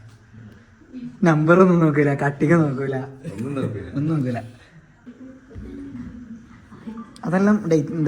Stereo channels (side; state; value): both; identical; correlation 1.00